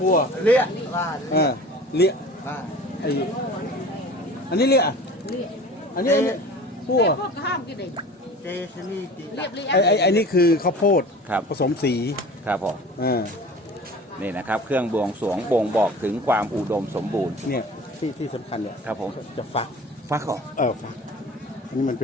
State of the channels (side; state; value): both; normal; correlation 0.41